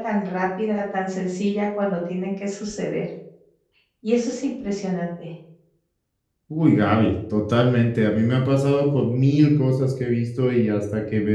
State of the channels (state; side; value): identical; both; correlation 1.00